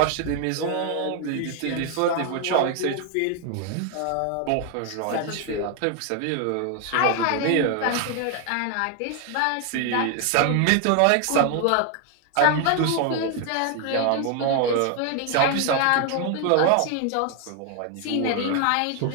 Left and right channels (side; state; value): both; different; correlation 0.01